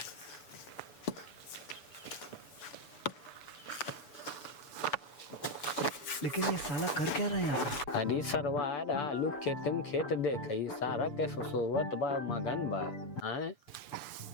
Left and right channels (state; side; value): late; right; 6.9 ms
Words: लेकिन ये साला कर क्या रहा है यहाँ पे? अरे सरवार आलू खेते में खेत देखई सारा के सोवत बा मगन बा हैं